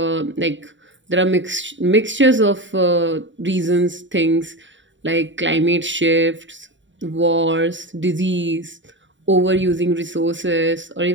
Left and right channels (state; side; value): late; left; 0.54 ms